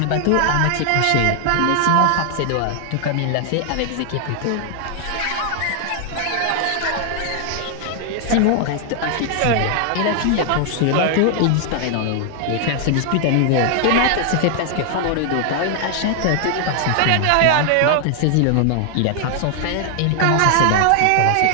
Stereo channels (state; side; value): different; both; correlation 0.00